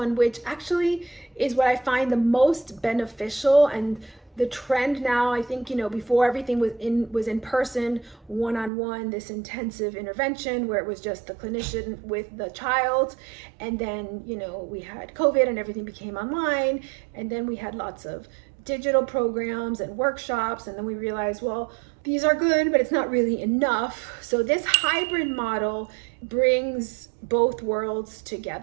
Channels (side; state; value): left; drops out; at 8.7 s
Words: which actually is what I find the most beneficial and the trend now, I think, before everything was in person, one-on-one, this intensive intervention where it was just the clinician with the child. And then, we had COVID and everything became online. And then we had lots of digital programs and workshops. And then we realized, well, these are good, but it's not really enough. So this hybrid model brings both worlds